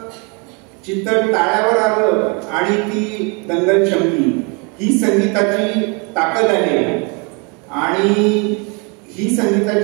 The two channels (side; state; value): left; quieter; 32.7 dB